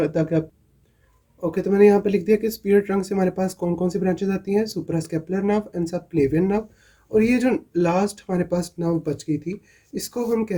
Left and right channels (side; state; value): both; identical; correlation 1.00